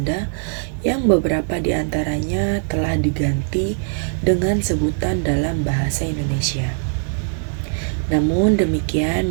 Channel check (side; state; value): left; silent; 65 dB below the other